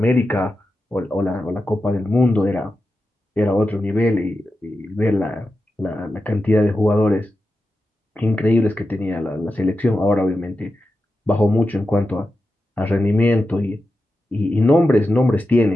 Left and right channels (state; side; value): normal; both; correlation 0.90